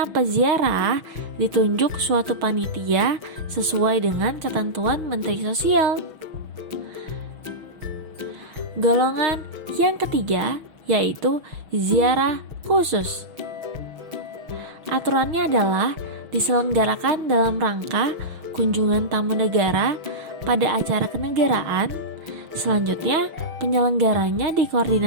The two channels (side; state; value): left; late; 6.2 ms